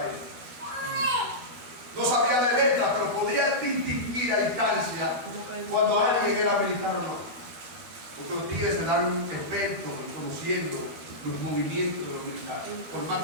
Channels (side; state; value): left; late; 12 ms